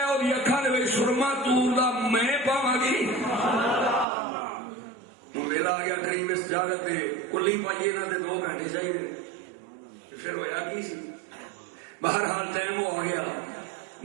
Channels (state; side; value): drops out; left; at 4.0 s